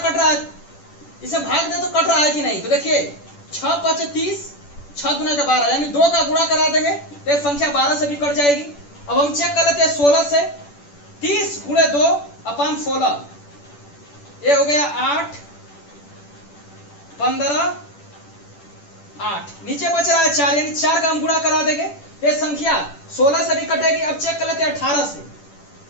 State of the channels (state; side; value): late; right; 10 ms